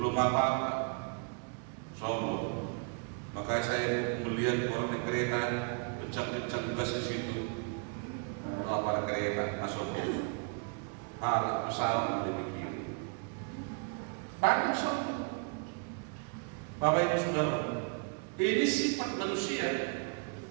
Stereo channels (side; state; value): left; quieter; 39.1 dB